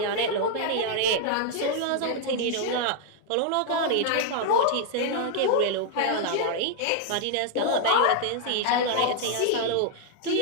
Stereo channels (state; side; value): different; both; correlation 0.00